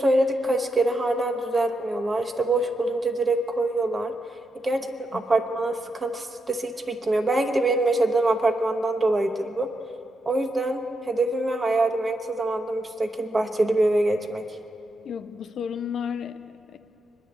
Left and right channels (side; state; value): both; normal; correlation 0.83